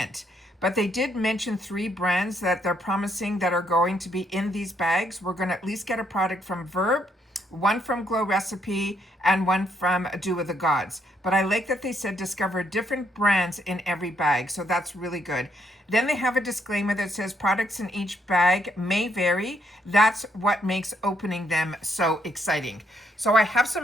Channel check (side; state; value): both; normal; correlation 0.73